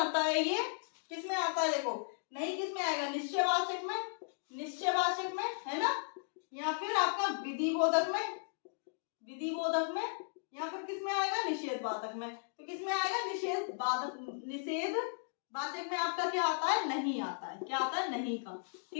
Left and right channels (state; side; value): silent; right; digital silence